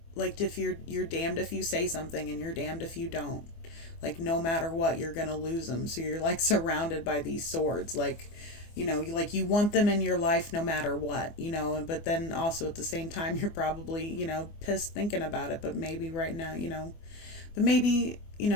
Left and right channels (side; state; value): right; late; 24 ms